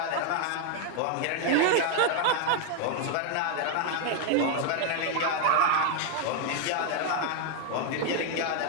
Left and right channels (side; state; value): both; different; correlation 0.01